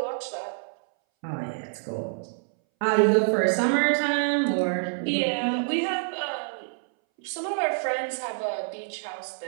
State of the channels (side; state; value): left; silent; 60 dB below the other